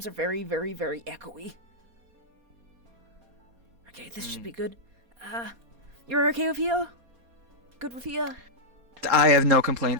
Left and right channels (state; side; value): late; left; 4.2 ms